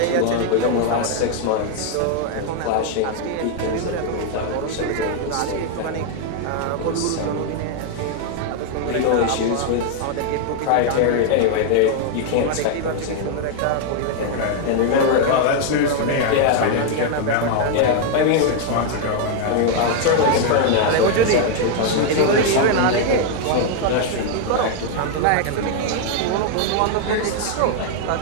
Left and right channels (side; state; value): both; different; correlation 0.00